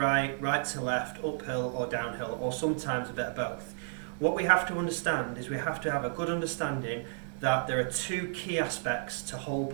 right to left, uphill or downhill, or sometimes a bit of both. What we have to understand is we have to have a good understanding that there are two key aspects to hole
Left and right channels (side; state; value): left; silent; digital silence